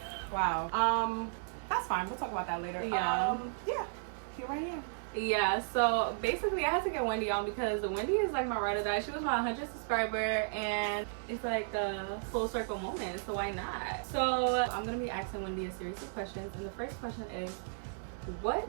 Wow. That's fine. We'll talk about that later. Yeah. Yeah. Here I am. Yeah, so basically I had to get Wendy on because Wendy is like my ride or die. She was my 100th subscriber and it's like a full circle moment, so why not? So I'm gonna be asking Wendy a series of questions, and the first question is,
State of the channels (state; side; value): silent; left; digital silence